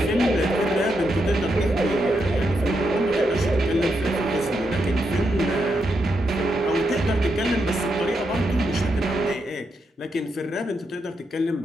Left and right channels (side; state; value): both; normal; correlation 0.82